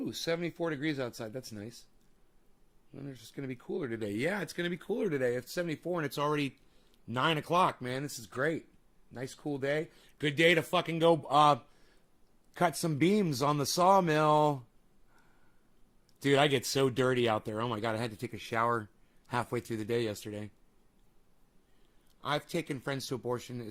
74 degrees outside. That's nice. And it's just going to be cooler today. Yeah, it's going to be cooler today. It's 74 and it's already 9 o'clock, man. This is great. Nice, cool day. Good day to fucking go cut some beams on the sawmill. Dude, I get so dirty out there. Oh, my God. I had to take a shower halfway through the day yesterday. I've taken friends to abortion.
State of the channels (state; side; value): identical; both; correlation 1.00